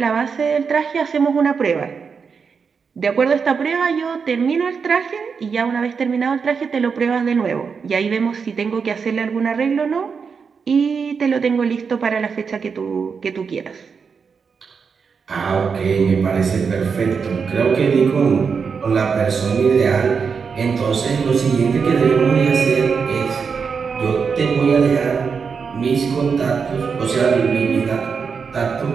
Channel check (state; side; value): quieter; left; 5.8 dB